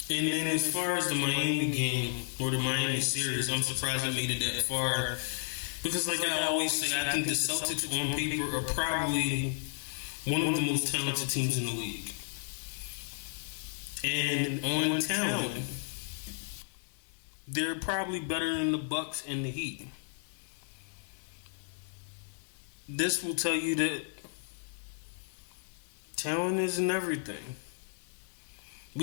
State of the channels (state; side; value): silent; right; digital silence